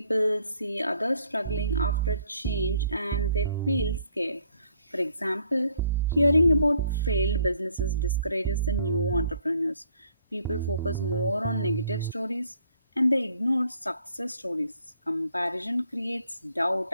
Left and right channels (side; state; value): both; inverted; correlation -0.64